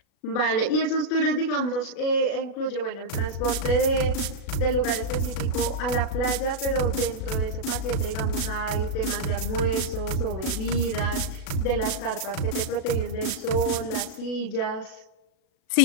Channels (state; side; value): late; right; 37 ms